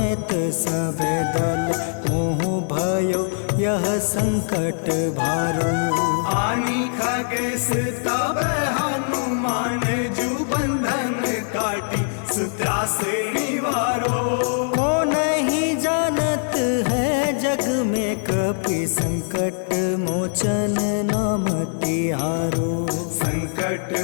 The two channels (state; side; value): silent; right; digital silence